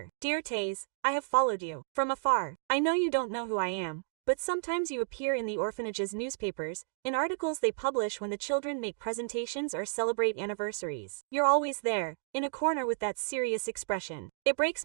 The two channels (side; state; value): left; silent; digital silence